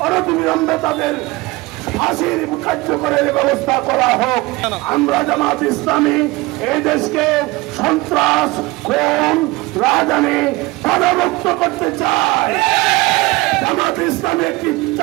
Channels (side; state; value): left; quieter; 21.5 dB